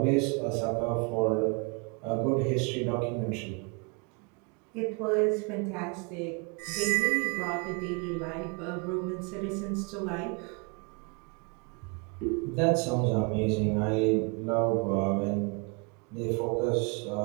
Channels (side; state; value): left; quieter; 32.4 dB